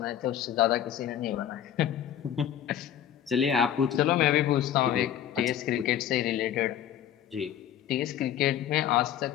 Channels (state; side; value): quieter; right; 10.4 dB